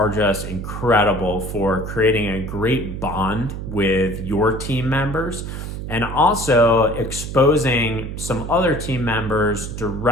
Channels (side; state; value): right; noise; hum, 7 dB below the sound